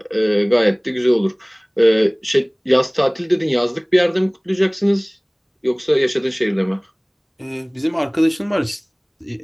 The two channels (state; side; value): identical; both; correlation 1.00